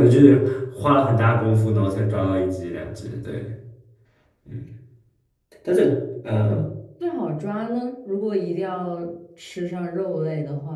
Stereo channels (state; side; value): identical; both; correlation 1.00